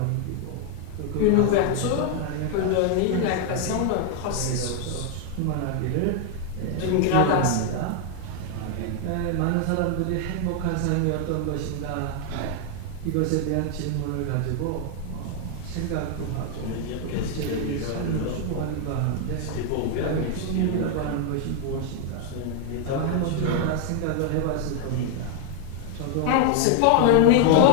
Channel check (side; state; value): both; different; correlation 0.00